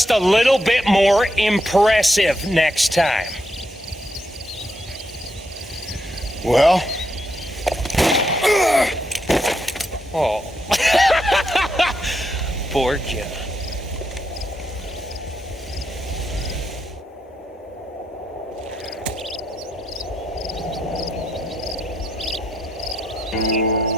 a little bit more impressive next time. Well? Oh. Poor John.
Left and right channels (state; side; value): normal; both; correlation 0.80